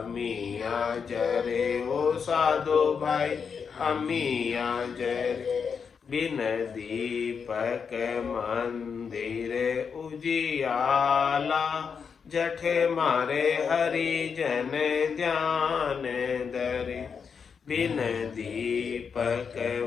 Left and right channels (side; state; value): right; quieter; 6.2 dB